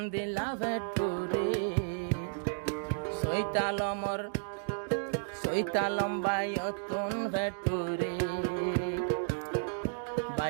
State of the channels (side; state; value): left; silent; digital silence